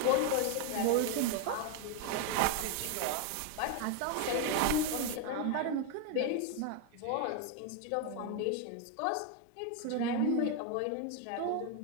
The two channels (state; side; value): different; both; correlation 0.01